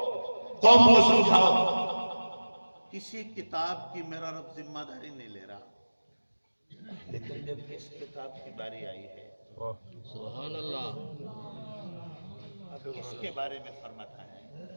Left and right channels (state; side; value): inverted; both; correlation -1.00